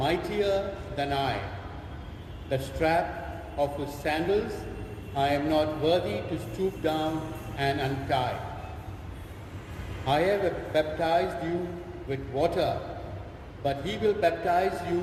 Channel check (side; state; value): both; identical; correlation 1.00